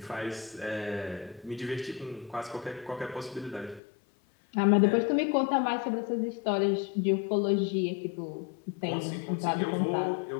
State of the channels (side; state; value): right; drops out; at 3.8 s